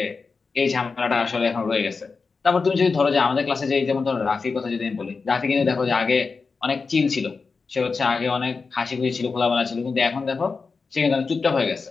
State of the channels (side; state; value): right; quieter; 4.6 dB